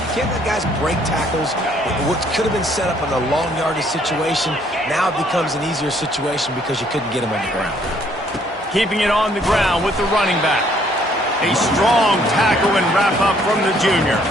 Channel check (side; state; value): both; normal; correlation 0.64